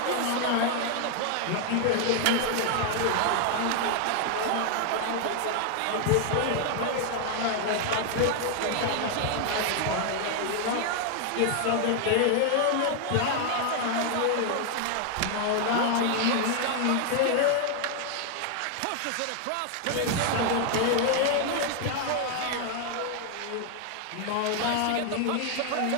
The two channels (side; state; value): both; different; correlation 0.00